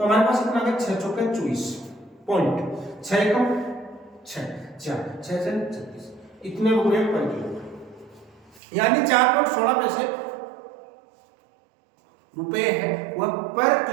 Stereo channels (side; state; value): left; drops out; at 8.6 s